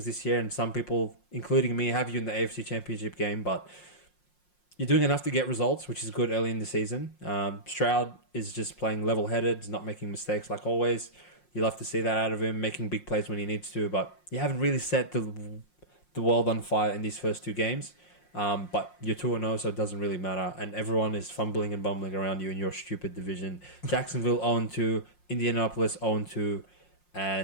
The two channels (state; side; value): late; right; 5.6 ms